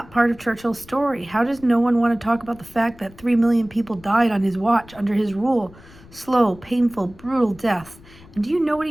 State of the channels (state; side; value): noise; left; rumble, 23 dB below the sound